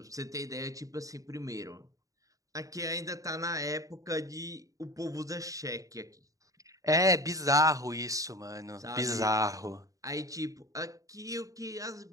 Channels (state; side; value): late; left; 0.16 ms